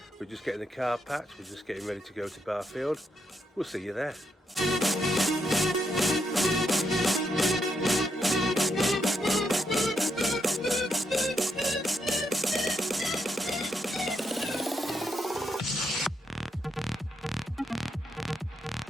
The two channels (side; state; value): both; normal; correlation 0.79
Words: We're just getting the car packed, we're just getting ready to go to Barfield. We'll see you there.